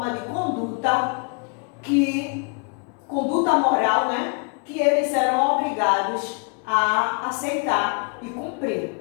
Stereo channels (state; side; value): quieter; right; 38.6 dB